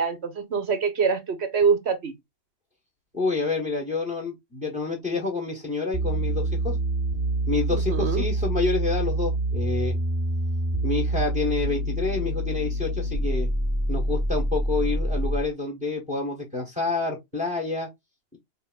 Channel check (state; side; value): late; left; 2.8 ms